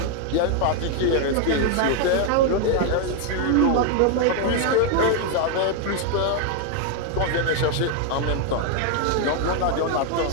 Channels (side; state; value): both; different; correlation 0.00